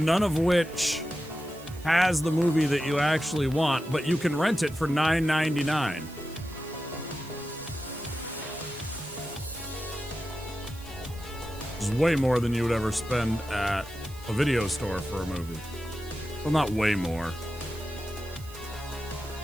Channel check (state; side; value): noise; right; hiss, 20 dB below the sound